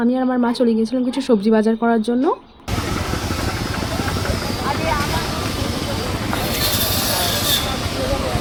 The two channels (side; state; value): both; identical; correlation 1.00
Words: আমি আর আমার মা চলে গিয়েছিলাম কিছু সবজি বাজার করার জন্য।